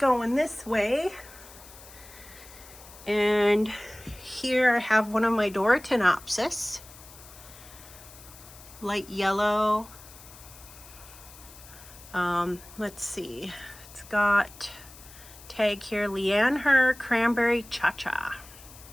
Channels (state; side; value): noise; left; hiss, 19 dB below the sound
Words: this way, and here I have one of my Phalaenopsis, light yellow. Let's see, it's got tag here, Leanne Cranberry Cha-Cha.